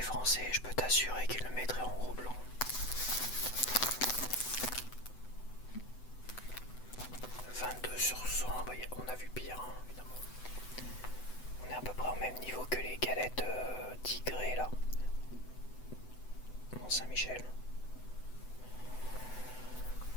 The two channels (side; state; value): right; late; 8.0 ms